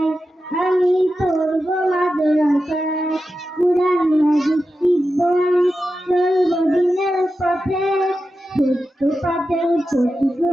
আমি পড়বো মাদ্রাসায়। কুরআন হাদিস শিখবো আমি চলবো দিনের পথে, সত্য পথের পথিক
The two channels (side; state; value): both; normal; correlation 0.91